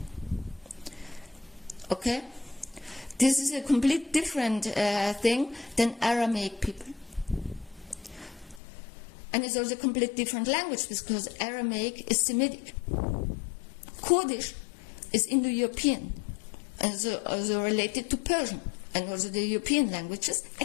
Okay? This is a complete different thing than Aramaic people. And it's also a complete different language because Aramaic is Semitic. Kurdish is Indo-European, and also related to Persian, and also the European languages,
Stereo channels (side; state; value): right; drops out; at 8.6 s